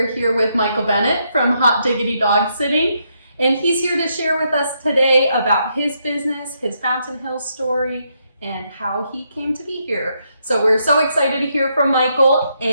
here with Michael Bennett from Hot Diggity Dog Sitting. And he's here to share with us today about his business, his Fountain Hills story, and how he came to be here. So we're so excited to hear from Michael,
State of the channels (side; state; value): both; inverted; correlation -0.78